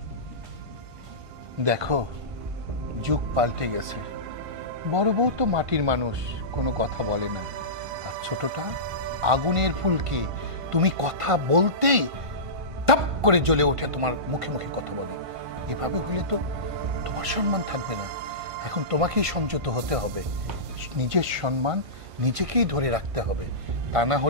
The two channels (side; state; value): left; late; 1.5 ms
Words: দেখো, যুগ পাল্টে গেছে। বড় বউ তো মাটির মানুষ, কোনো কথা বলে না। আর ছোটটা আগুনের ফুলকি, তুমি কথা বলতেই টাপ করে জ্বলে ওঠে, তোমার মুখে মুখে কথা বলে। এভাবে হলে তো তোমার সম্মান থাকবে না। এখন তোমাকেই সংযত হতে হবে, নিজের সম্মান নিজেকেই ধরে রাখতে হবে। তা না